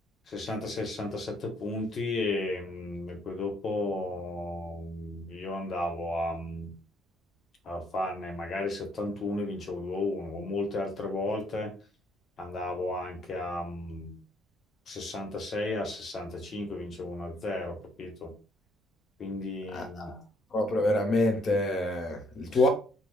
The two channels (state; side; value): normal; both; correlation 0.68